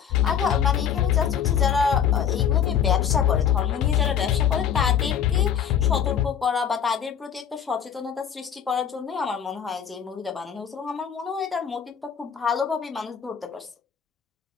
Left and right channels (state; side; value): quieter; right; 8.2 dB